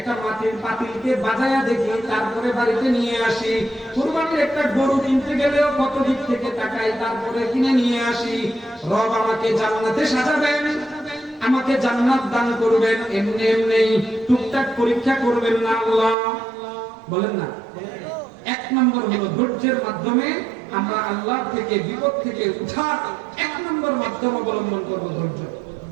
মাটির পাতিলকে বাজায়া দেখি, তারপরে বাড়িতে নিয়ে আসি। কুরবানির একটা গরু কিনতে গেলেও কত দিক থেকে তাকাই, তারপরে কিনে নিয়ে আসি। রব আমাকে জান্নাতে সাজাবেন, আমাকে জান্নাত দান করবেন, এমনি টুকটাক পরীক্ষা করবেন না আল্লাহ। বলেন না। এক নম্বর হলো ধৈর্যের মাধ্যমে আমরা আল্লাহ থেকে বিপদ থেকে উঠার এক নম্বর মাধ্যম অবলম্বন করবো ধৈর্য,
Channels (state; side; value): drops out; left; at 16.2 s